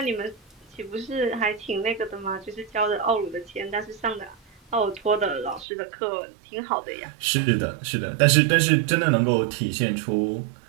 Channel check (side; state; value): left; drops out; at 5.7 s